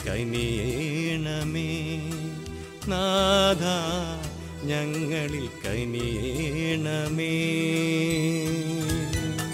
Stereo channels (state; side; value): identical; both; correlation 1.00